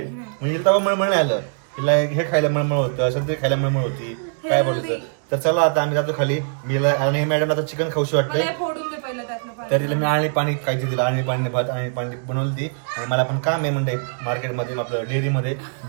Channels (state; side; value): silent; left; digital silence